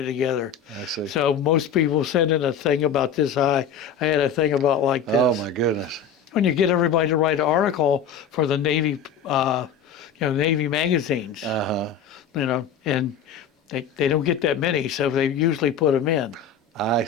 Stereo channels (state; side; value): quieter; right; 6.6 dB